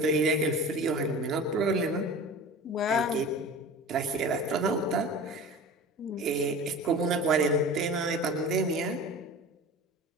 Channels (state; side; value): normal; both; correlation 0.36